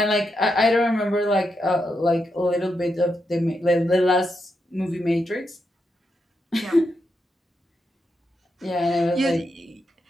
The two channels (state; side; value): normal; both; correlation 0.84